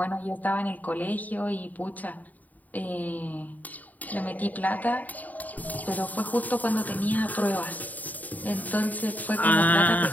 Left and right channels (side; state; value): right; late; 0.078 ms